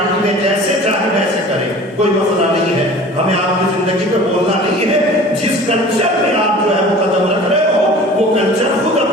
میں جیسے چاہے ویسے کریں، کوئی مسئلہ نہیں ہے. ہمیں آپ کی زندگی پہ بولنا نہیں ہے. جس کلچر میں آپ جو ہے وہ قدم رکھ رہے ہو وہ کلچر خود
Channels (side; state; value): both; normal; correlation 0.43